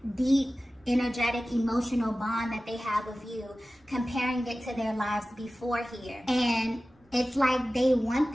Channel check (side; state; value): both; normal; correlation 0.96